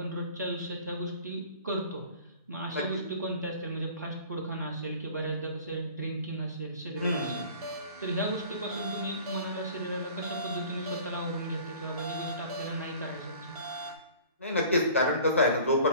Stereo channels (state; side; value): inverted; both; correlation -0.47